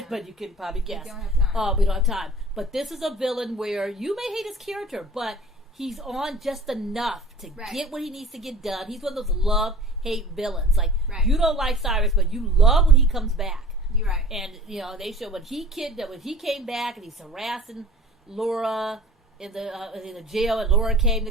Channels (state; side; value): normal; both; correlation 0.44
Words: But you can probably guess. We don't have time. We don't have time. But this is a villain where you may hate his character, but he's on just enough to get what he needs to get done. He's one of those love-hate villains. Like, you don't like Cyrus, but you love when he comes back. You're right. And, they show when he came back and he's harassing Laura in the jail, and Laura came to